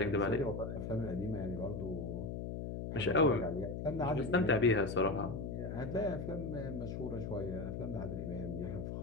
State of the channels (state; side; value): noise; left; hum, 4 dB below the sound